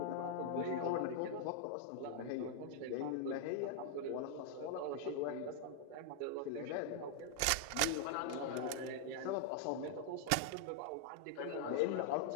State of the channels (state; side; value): different; both; correlation 0.00